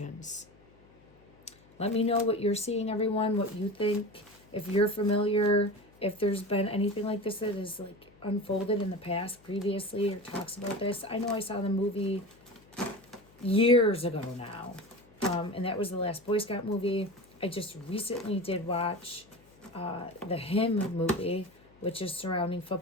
Let me know what you're seeing, everyone, what you think. If you're familiar, if there's been anything like this that is like unfolded in the past previously or talks about this. I know I saw the movie years ago now. And that was the last Boy Scout movie. I just recently did watch the Him movie, which is surrounding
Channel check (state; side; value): noise; left; hum, 28 dB below the sound